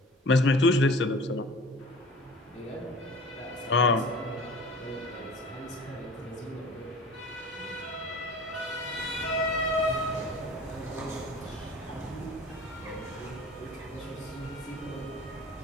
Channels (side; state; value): both; normal; correlation 0.42